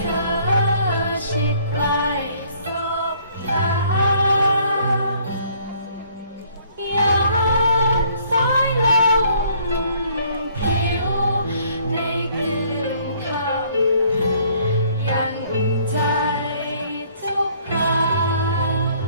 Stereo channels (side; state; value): both; inverted; correlation -0.61